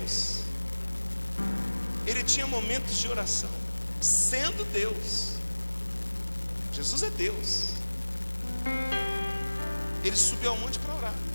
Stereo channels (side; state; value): both; inverted; correlation -1.00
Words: Ele tinha momentos de oração. Sendo Deus. Jesus é Deus. Ele subiu ao monte para orar.